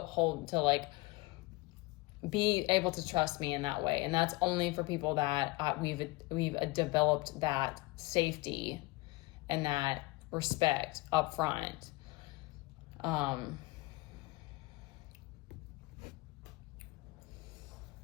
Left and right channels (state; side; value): quieter; right; 22.0 dB